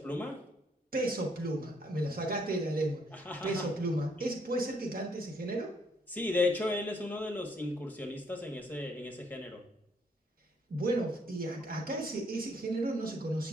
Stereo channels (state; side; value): normal; both; correlation 0.68